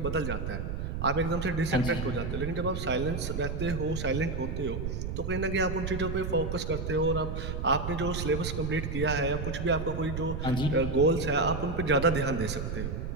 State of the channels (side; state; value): right; noise; rumble, 4 dB below the sound